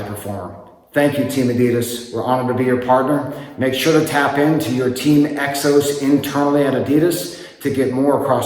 performer. Thank you, Team Adidas. We're honored to be your partner. Make sure to tap into your Team EXOS internally at Adidas to get more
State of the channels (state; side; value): identical; both; correlation 1.00